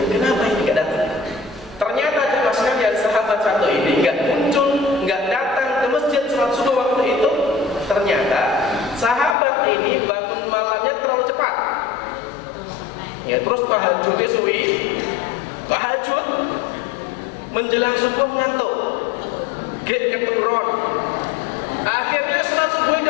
ini nggak datang? Ternyata jemaah sekalian, sahabat satu ini nggak muncul, nggak datang ke masjid sholat subuh waktu itu. Ternyata sahabat ini bangun malamnya terlalu cepat. Terus tahajudnya suwi, tahajud menjelang subuh ngantuk, keturun. Akhirnya sholat subuh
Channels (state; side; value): drops out; right; at 9.3 s